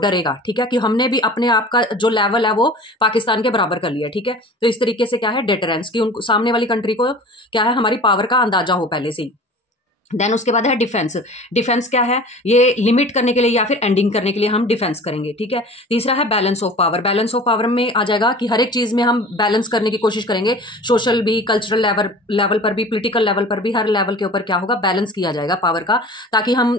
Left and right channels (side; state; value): both; normal; correlation 0.41